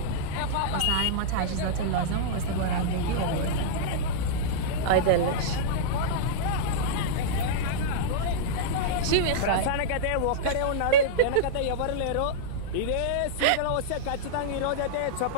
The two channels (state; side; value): different; both; correlation -0.02